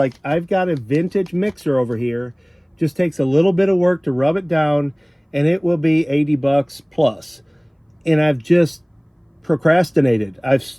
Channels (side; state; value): both; identical; correlation 1.00